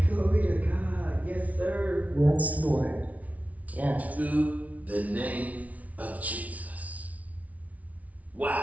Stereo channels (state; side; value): late; left; 0.070 ms